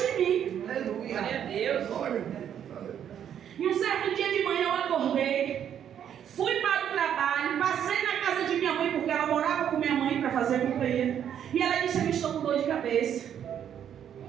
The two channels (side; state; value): left; quieter; 9.3 dB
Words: em mim. Aleluia. Glória a Deus. Glória. E um certo dia de manhã eu acordei, fui para o trabalho, passei na casa de minha mãe, porque ela morava com minha mãe para fazer companhia. E ela disse, eu estou com dor de cabeça.